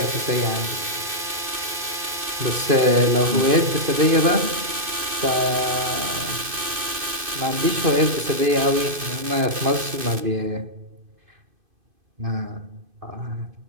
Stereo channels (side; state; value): left; late; 2.5 ms